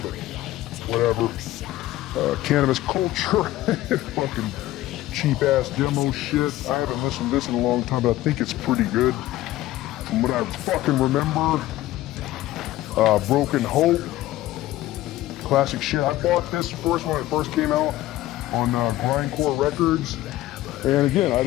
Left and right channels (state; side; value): quieter; right; 15.6 dB